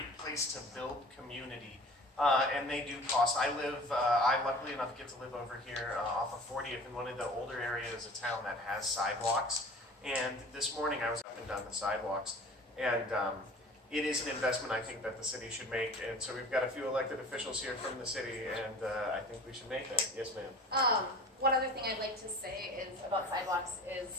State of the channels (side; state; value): both; normal; correlation 0.42